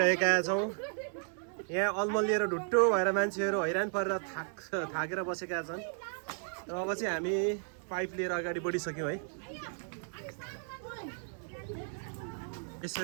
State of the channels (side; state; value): left; silent; 55 dB below the other